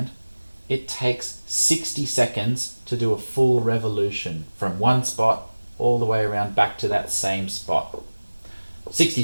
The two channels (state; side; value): inverted; both; correlation -1.00